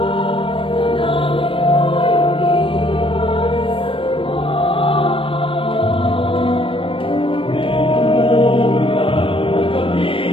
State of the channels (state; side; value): late; right; 0.25 ms